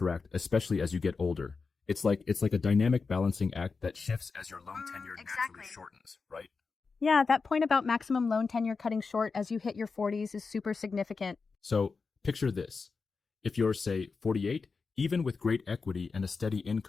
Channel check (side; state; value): right; quieter; 4.7 dB